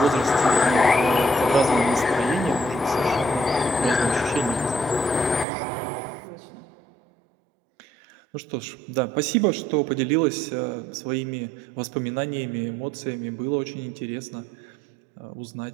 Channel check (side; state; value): left; drops out; at 5.5 s